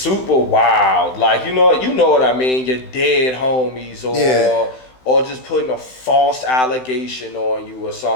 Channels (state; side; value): late; right; 16 ms